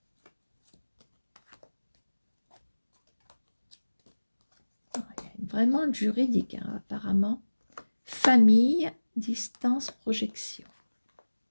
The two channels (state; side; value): inverted; both; correlation -1.00